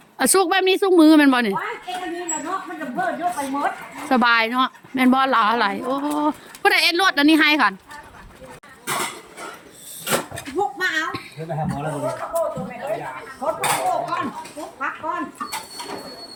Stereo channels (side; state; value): both; identical; correlation 1.00